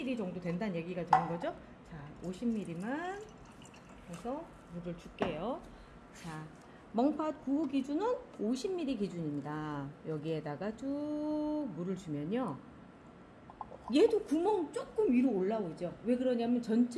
정도 된다는 얘기가 되는 거죠. 자, 50ml만 해서 물을 줄게요. 자, 멍팥 9호 기준은 50ml 기준입니다. 여기에다가 쭉 물을 주면요, 얘도 구멍 조금 위로 올라오죠. 왜 그러냐면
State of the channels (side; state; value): both; identical; correlation 1.00